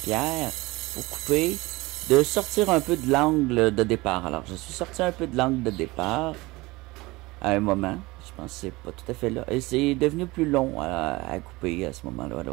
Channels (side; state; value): left; quieter; 21.7 dB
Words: pierre, pour couper, de sortir un peu de l'angle de départ. Alors, je suis sorti un peu de l'angle de départ, à un moment. Je pense que c'est pas tout à fait là. Et c'est devenu plus long à couper à ce moment-là.